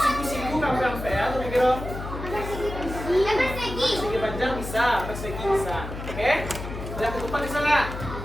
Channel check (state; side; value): noise; left; hum, 8 dB below the sound